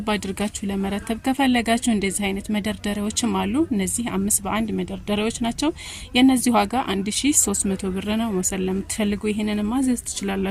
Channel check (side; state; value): both; identical; correlation 1.00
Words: አድርጋችሁ ለመረተብ ከፈለጋችሁ እንደዚህ አይነት መደርደሪያዎችም አሉ። እነዚህ 5 በ1 መደርደሪያዎች ናቸው። የነዚህ ዋጋ 1300 ብር ነው። መውሰድ ለምትፈልጉ ይሄንን ማዘዝ